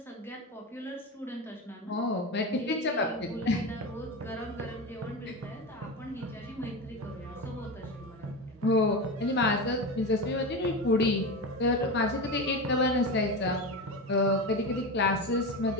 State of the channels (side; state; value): both; normal; correlation 0.22